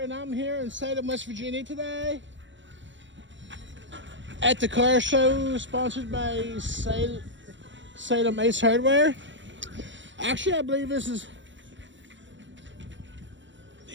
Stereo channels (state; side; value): late; left; 0.54 ms